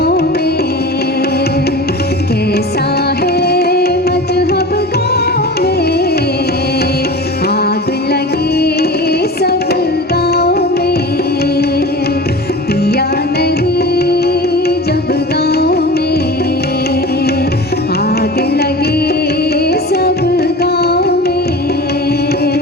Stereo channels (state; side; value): normal; both; correlation 0.35